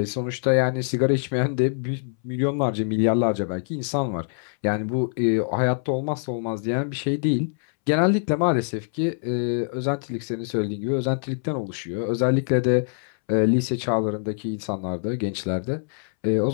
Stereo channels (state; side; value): silent; right; 62 dB below the other